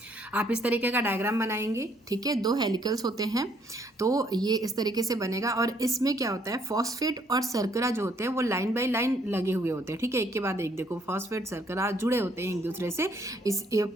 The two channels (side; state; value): both; normal; correlation 0.67